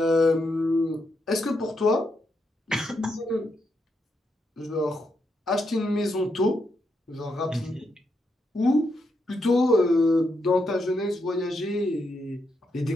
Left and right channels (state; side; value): normal; both; correlation 0.81